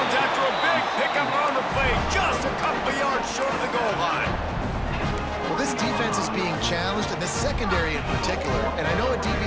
after a big pickup on the play, just a couple of yards short of the goal line. Well, this defense is being challenged, and the secondary in particular. And I know a DB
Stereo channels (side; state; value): both; identical; correlation 1.00